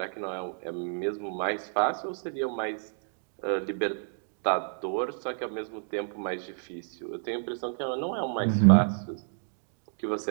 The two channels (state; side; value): silent; left; digital silence